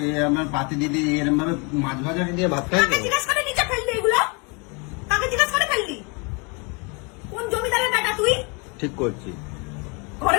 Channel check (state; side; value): quieter; right; 31.7 dB